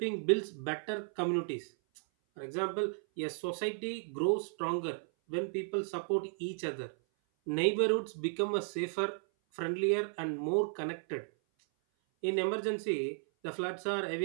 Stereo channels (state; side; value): silent; left; 55 dB below the other